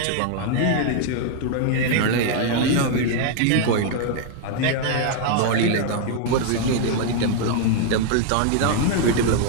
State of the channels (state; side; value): different; both; correlation 0.00